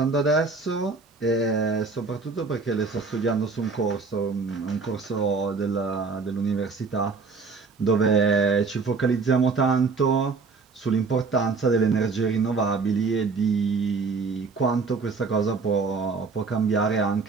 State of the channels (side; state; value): left; quieter; 4.4 dB